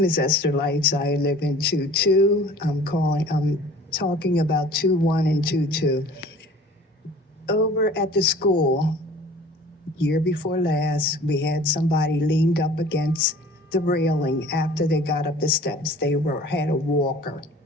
is Esther Lights. I live in 22. I'm talking about 21 and 22. Over at the school, year before last, we had somebody leaned up against the railing after they got up the steps. They had a walker.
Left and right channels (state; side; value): normal; both; correlation 0.47